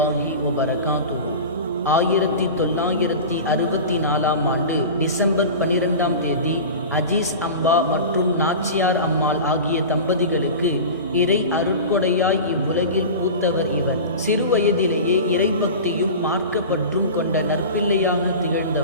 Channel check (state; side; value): inverted; both; correlation -0.31